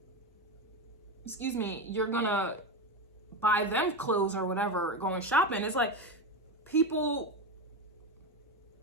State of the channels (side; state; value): both; normal; correlation 0.16